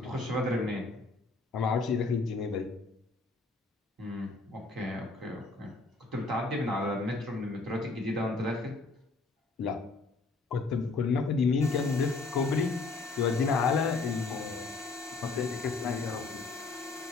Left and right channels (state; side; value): quieter; right; 3.7 dB